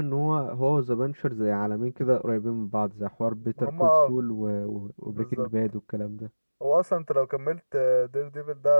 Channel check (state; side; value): inverted; both; correlation -1.00